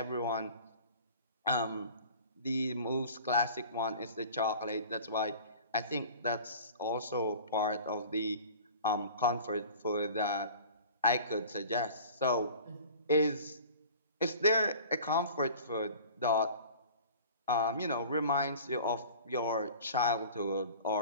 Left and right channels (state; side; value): inverted; both; correlation -0.43